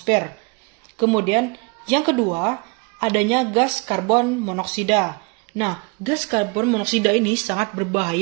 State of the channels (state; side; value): quieter; left; 30.1 dB